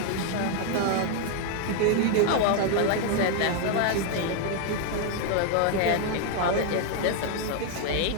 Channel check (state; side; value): different; both; correlation 0.00